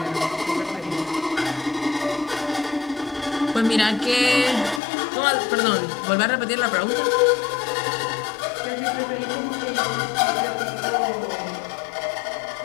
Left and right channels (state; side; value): drops out; right; at 4.8 s